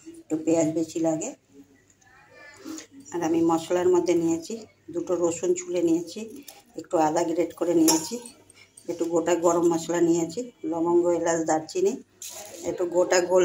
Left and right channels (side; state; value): both; identical; correlation 1.00